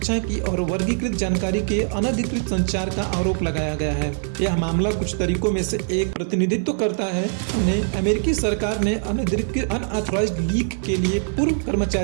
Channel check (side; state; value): left; silent; digital silence